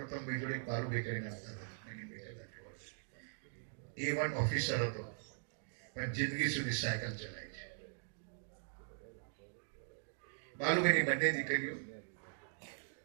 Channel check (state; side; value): silent; left; digital silence